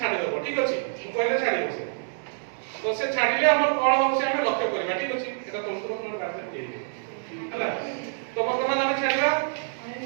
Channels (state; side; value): silent; left; digital silence